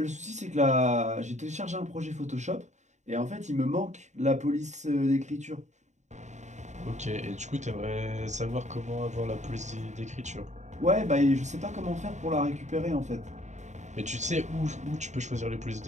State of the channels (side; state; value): left; late; 0.34 ms